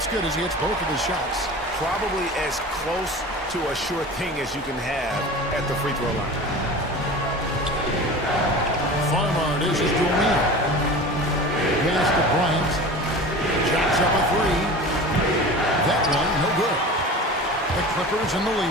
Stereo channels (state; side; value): normal; both; correlation 0.35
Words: good as he hits both of his shots. Probably as close to a sure thing as you can have at the free throw line. Farmer dishes to O'Neal. Pass to Bryant. Jacks up a 3. That one, no good. The Clippers in the